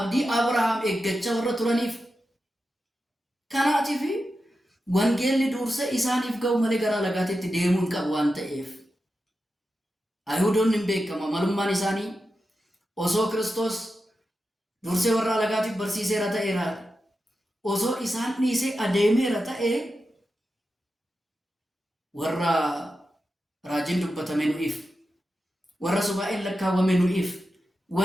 Abrahaam eeggachaa warra turaniif kanaatiif wangeelli dursee isaaniif ga'u malee gara alagaatitti deemuu hin qabu waan ta'eef Yihuudoonni hin beekama malummaan isaanii osoo Kiristoos dursee warra alagaatiif barsiiseera ta'eera osoo isaan dhiisee adeemeera ta'e warra raajiin dubbatame nu'iif warra subaa'een lakkaawwame nu'iif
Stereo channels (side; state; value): both; normal; correlation 0.90